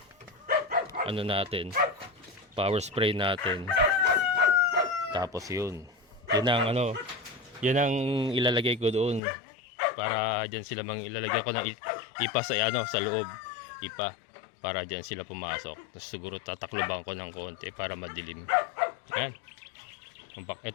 ano natin, power spray natin. Tapos yun ang ano, yun ang ilalagay ko doon para diyan sila ilalagay ko ng ipa sa ano sa loob, ipa para diyan sila pumasok. Tapos siguro tatakluban ko ng konti para madilim. Yan.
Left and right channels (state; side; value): drops out; right; at 9.2 s